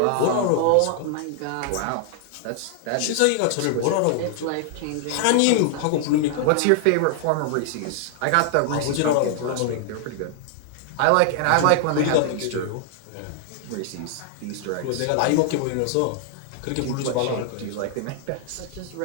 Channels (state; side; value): different; both; correlation 0.00